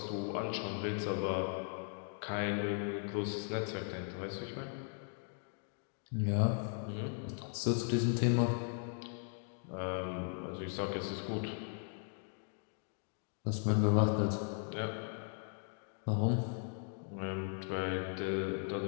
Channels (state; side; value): silent; right; 52 dB below the other